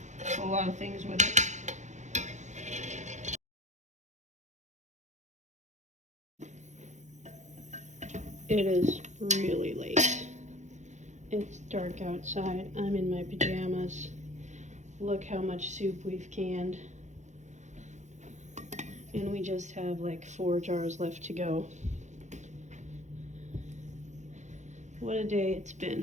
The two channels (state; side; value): late; left; 0.34 ms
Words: a lot of things with it. It is really late. It's dark outside. I'm in my pajamas. Look how much soup we've canned. And we just have like 4 jars left to go. What a day it's